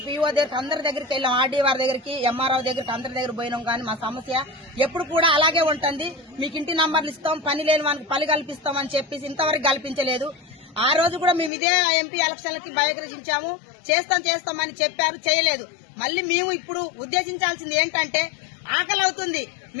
పీఓ దగ్గర, అందరి దగ్గరికి వెళ్ళాం. ఆర్డీఆర్ దగ్గరికి, ఎంఆర్ఓ దగ్గరికి, అందరి దగ్గర పోయినాం. కానీ మా సమస్య ఎప్పుడు కూడా అలాగే ఉంటుంది. మీకు ఇంటి నంబర్లు ఇస్తాం, పని లేని వానికి పని కల్పిస్తాం అని చెప్పేసి ఇంతవరకు కల్పించలేదు. ఆ రోజు కూడా మేము ఇదే ఎంపీ ఎలక్షన్లకి బహిష్కరించాము. చేస్తామని చెప్పారు, చేయలేదు. మళ్ళీ మేము ఇప్పుడు ఉద్దేశించాల్సింది ఏంటంటే, ఆకలి అవుతుంది,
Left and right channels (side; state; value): right; drops out; at 11.5 s